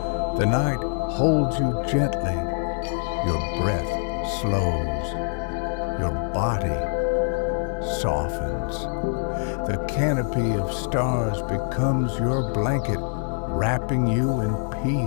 the night holds you gently. Your breath slows, your body softens. The canopy of stars becomes your blanket, wrapping you in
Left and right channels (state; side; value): silent; right; digital silence